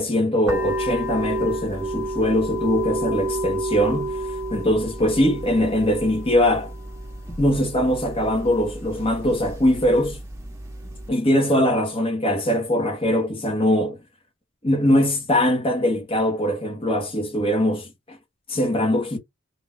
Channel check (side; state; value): both; normal; correlation 0.58